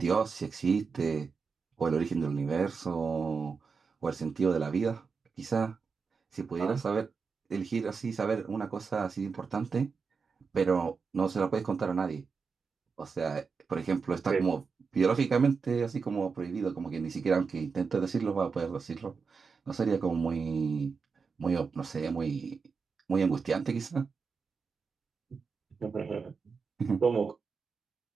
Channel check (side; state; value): left; quieter; 5.2 dB